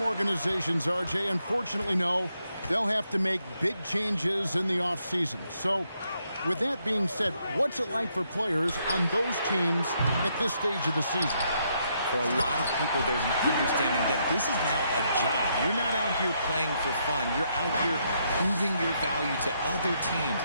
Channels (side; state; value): both; inverted; correlation -0.76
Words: organizations, RJ, unfortunately know they'll have to make big changes in the offseason. So, with that being said, what's it like for players on those teams at this stage of the season? For a lot of people, there's an understanding that this is now a job. You're not out here playing for fun. You're out here proving your value to other teams,